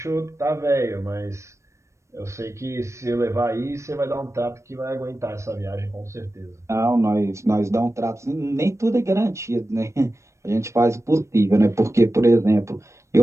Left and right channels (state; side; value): late; left; 0.14 ms